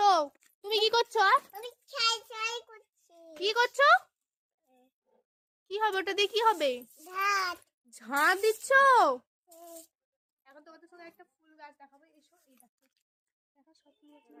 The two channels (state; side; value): identical; both; correlation 1.00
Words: তুমি? কি করছো? আমি ছাই ছাই করছি। কি করছো? কি হবে ওটা দিয়ে? কি হবে? ভাত। ঝাঁট দিচ্ছ? এখন তোমাদের সঙ্গে একটা ফুল গাছ দেখাবো, এসো। এই দেখো, দেখো সব ফুল